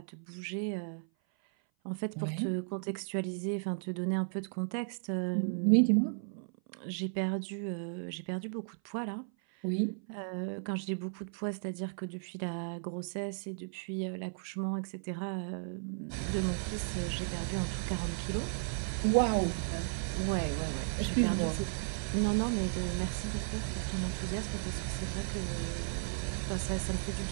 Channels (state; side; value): silent; left; 55 dB below the other